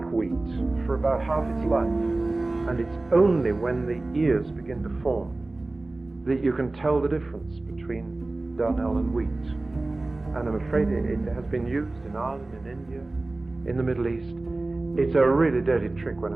wheat for about half its life. And it's only when the ears begin to form that you can tell the difference between darnel and wheat. And I'm afraid it has been used in Ireland, in India, in the Middle East. It's a really dirty trick when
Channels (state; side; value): quieter; left; 3.0 dB